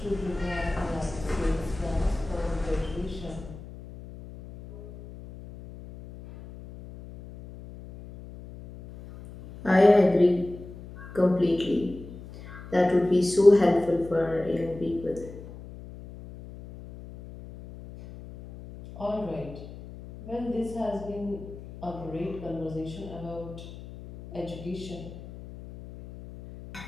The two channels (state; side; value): noise; left; hum, 15 dB below the sound